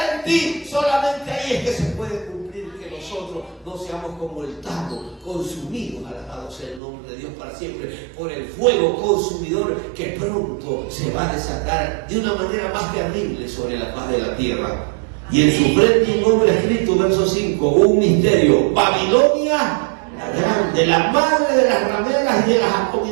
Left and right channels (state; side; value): drops out; left; at 6.8 s